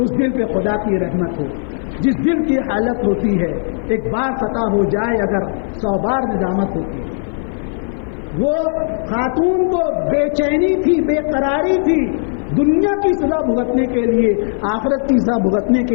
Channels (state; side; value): silent; right; 55 dB below the other